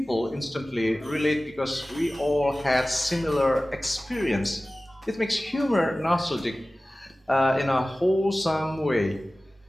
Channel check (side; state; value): both; normal; correlation 0.97